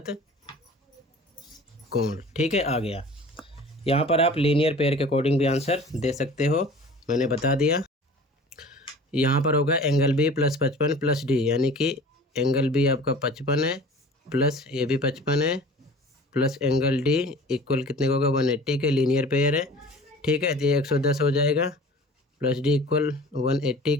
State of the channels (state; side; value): normal; both; correlation 0.43